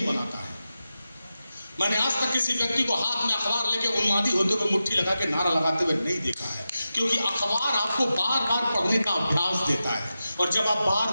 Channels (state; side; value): inverted; both; correlation -0.92